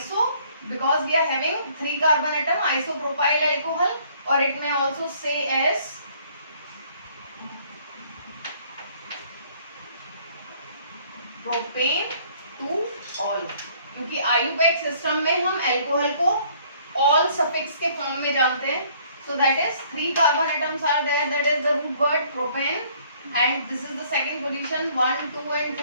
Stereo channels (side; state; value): both; inverted; correlation -0.60